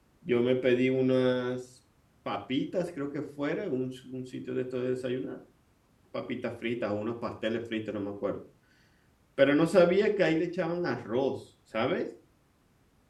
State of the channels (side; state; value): both; identical; correlation 1.00